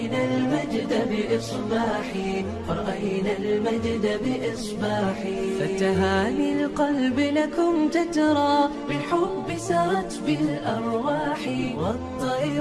المجد بإصباحي، فرأينا المجد بإصباحي. فتهاني القلب لكم تترى بالحب سرت بالأرواح،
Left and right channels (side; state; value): both; identical; correlation 1.00